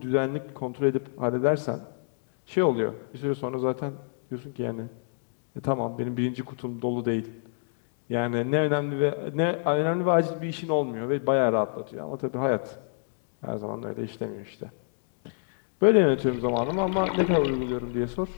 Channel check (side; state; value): right; silent; digital silence